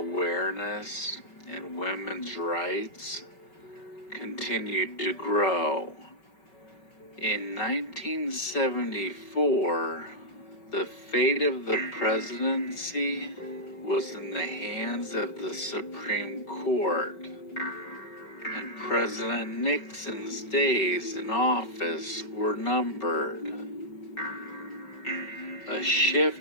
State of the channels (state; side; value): late; right; 5.3 ms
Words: and women's rights continued to grow. In 1974, the fate of the presidency was in the hands of the Supreme Court, and President Nixon's days in office were numbered. A